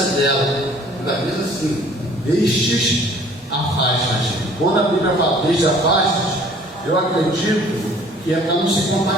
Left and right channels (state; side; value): normal; both; correlation 0.53